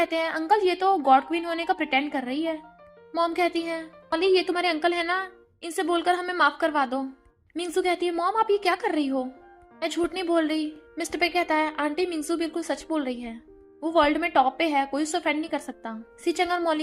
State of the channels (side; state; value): both; identical; correlation 1.00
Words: हैं, अंकल ये तो गॉड क्वीन होने का प्रिटेंड कर रही है। मॉम कहती है, मॉली ये तुम्हारे अंकल है ना, इनसे बोलकर हमें माफ करवा दो। मिंगजू कहती है, मॉम आप ये क्या कर रही हो? मैं झूठ नहीं बोल रही। मिस्टर पे कहता है, आंटी मिंगजू बिल्कुल सच बोल रही है, वो वर्ल्ड में टॉप पे है, कोई उसे ऑफेंड नहीं कर सकता। सीचेंग और